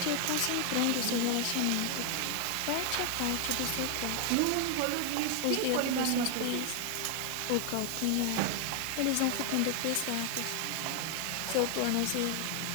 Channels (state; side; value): different; both; correlation 0.00